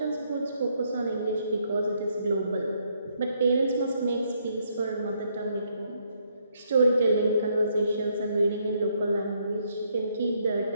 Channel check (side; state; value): both; inverted; correlation -0.72